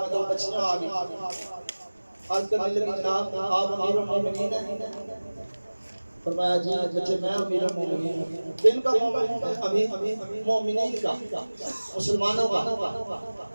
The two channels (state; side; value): inverted; both; correlation -1.00